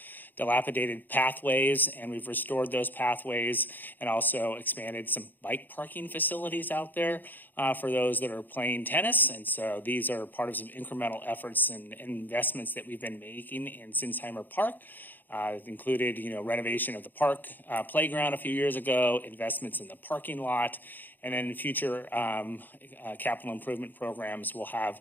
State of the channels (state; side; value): late; right; 0.087 ms